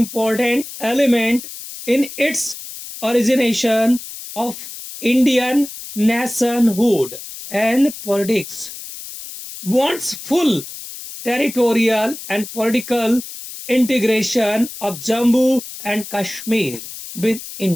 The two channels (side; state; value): left; noise; hiss, 12 dB below the sound